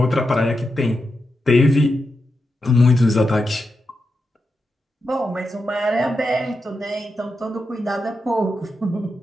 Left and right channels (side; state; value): both; normal; correlation 0.87